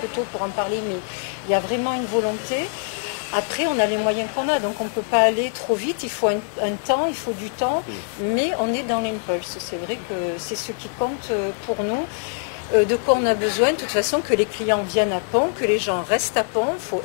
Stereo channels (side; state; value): right; silent; 63 dB below the other